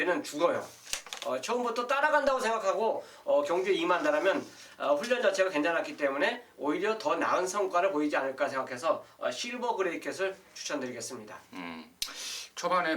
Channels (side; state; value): both; identical; correlation 1.00